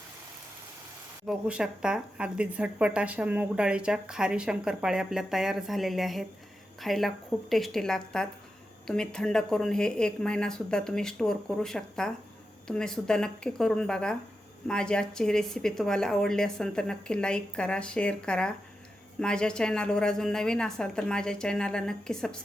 बघू शकता अगदी झटपट अशा मूग डाळीच्या खारी शंकरपाळे आपल्या तयार झालेल्या आहेत. खायला खूप टेस्टी लागतात. तुम्ही थंड करून हे 1 महिनासुद्धा तुम्ही स्टोअर करू शकता. तुम्ही सुद्धा नक्की करून बघा. माझी आजची रेसिपी तुम्हाला आवडली असेल तर नक्की लाईक करा, शेअर करा. माझ्या चॅनलवर अजून नवीन असाल तर माझ्या चॅनलला नक्की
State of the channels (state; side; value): normal; both; correlation 0.89